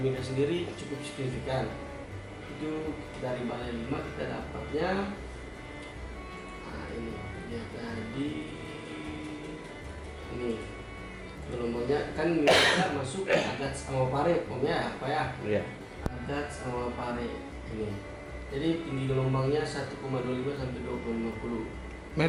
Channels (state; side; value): identical; both; correlation 1.00